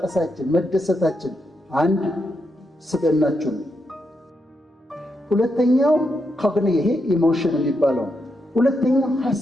መደሰታችን አንድ ስብዕናችሁ ነው። ሁለተኛው ይሄ ኢሞሽን የሚባለው። ሁለተኛው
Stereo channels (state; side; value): normal; both; correlation 0.83